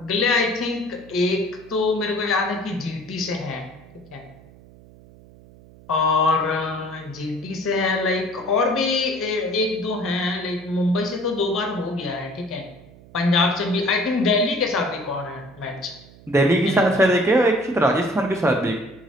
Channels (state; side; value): noise; right; hum, 23 dB below the sound